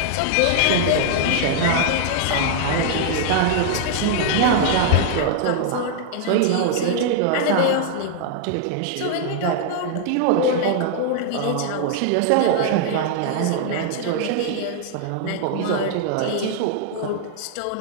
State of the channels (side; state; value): both; different; correlation 0.00